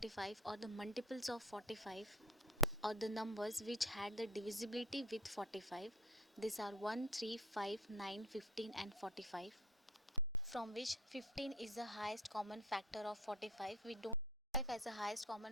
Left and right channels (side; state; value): both; normal; correlation 0.46